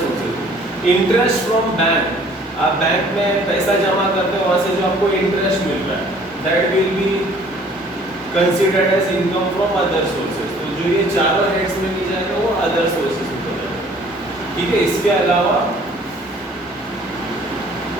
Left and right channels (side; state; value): both; normal; correlation 0.55